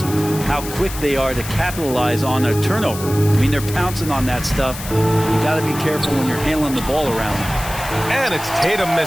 how quick they are to capitalize on a turnover. I mean, they're pouncing on that stuff. You got to be careful when you're handling the ball around. And it's Tatum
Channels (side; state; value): left; noise; hiss, 11 dB below the sound